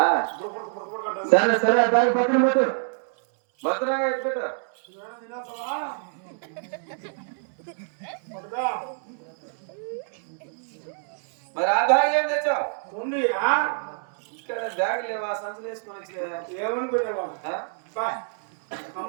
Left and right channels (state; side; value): silent; left; digital silence